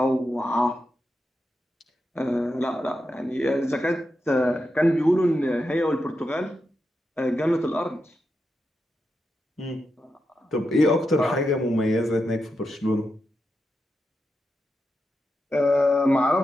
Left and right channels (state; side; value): normal; both; correlation 0.87